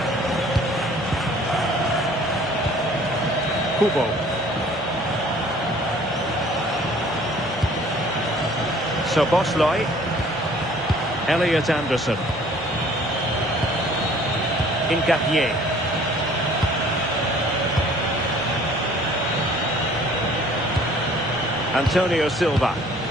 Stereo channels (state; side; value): normal; both; correlation 0.54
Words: Kubo. SZOBOSZLAI. Elliot Anderson. Incapié. Antonio Silva.